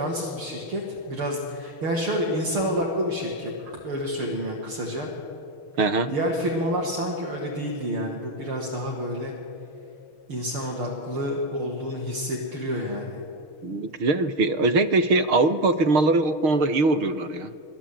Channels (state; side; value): late; left; 6.5 ms